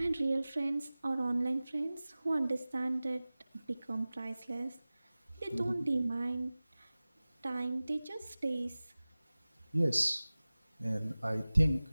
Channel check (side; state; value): both; inverted; correlation -0.98